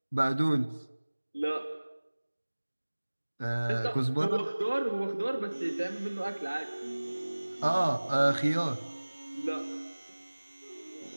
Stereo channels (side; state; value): both; inverted; correlation -1.00